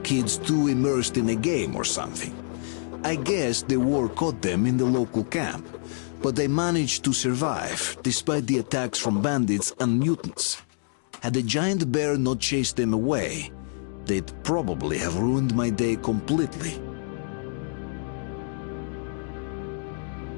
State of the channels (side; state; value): right; silent; 60 dB below the other